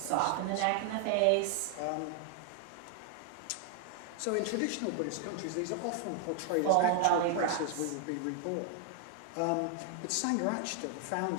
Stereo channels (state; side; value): different; both; correlation 0.00